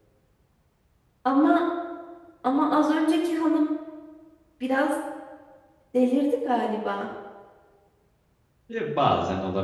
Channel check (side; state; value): both; identical; correlation 1.00